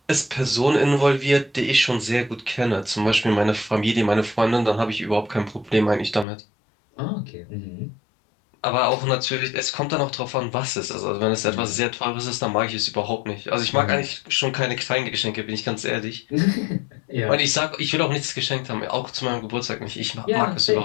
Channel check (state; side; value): drops out; right; at 6.2 s